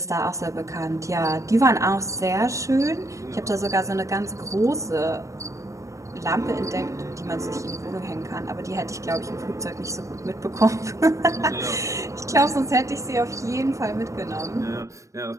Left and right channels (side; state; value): left; late; 0.15 ms